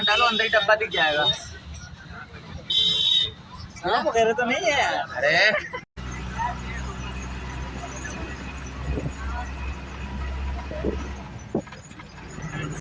डालो अंदर ही डब्बा दिख जाएगा। तेरे तो नहीं है। अरे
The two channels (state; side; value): identical; both; correlation 1.00